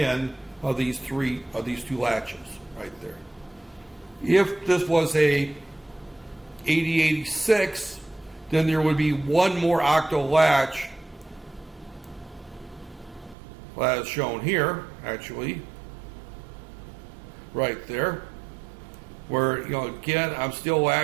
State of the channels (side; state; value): left; drops out; at 13.4 s